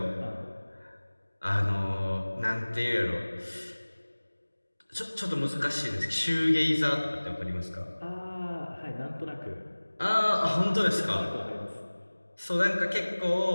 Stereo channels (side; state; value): both; inverted; correlation -1.00